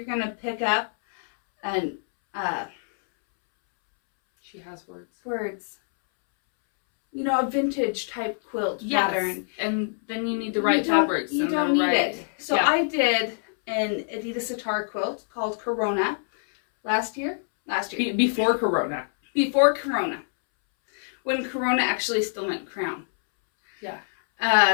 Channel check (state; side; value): silent; right; 62 dB below the other